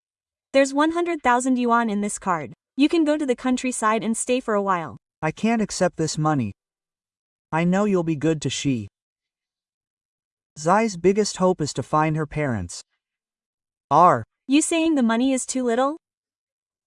There's 100,000 yuan in this card. You can go to the countryside and stay for a while. I can't accept this money. I know you'll be good to she. Zai's biggest hope is to find her parents. You saying the money is too little?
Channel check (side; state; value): both; identical; correlation 1.00